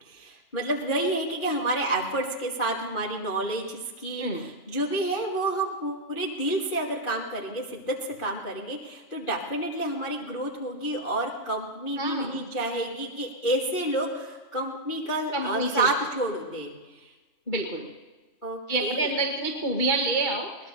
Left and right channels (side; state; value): right; late; 2.5 ms